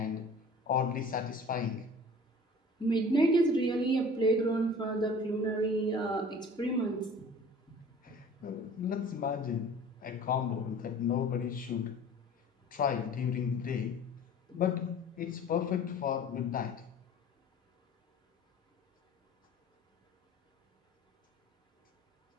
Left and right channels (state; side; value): normal; both; correlation 0.45